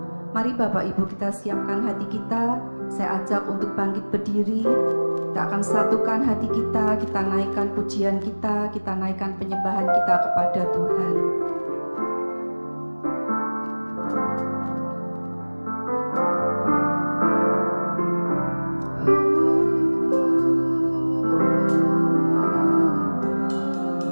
Mari Bapak Ibu kita siapkan hati kita. Saya ajak untuk bangkit berdiri. Kita akan satukan hati kita naikkan pujian kita naikkan penyembahan kita kepada Tuhan.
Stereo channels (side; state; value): both; inverted; correlation -1.00